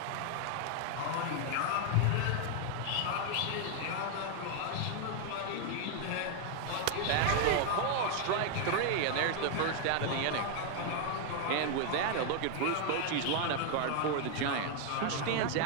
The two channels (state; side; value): different; both; correlation 0.00